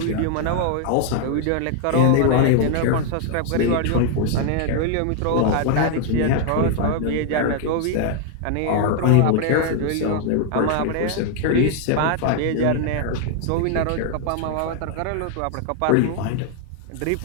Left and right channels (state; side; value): different; both; correlation 0.00